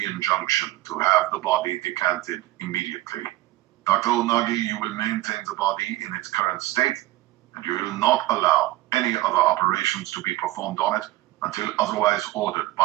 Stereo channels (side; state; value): left; quieter; 17.3 dB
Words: injunction to have the body decanted immediately. Dr. Onagi, you will maintain the body in its current state, and you will not allow any other operations to be performed on it until otherwise ordered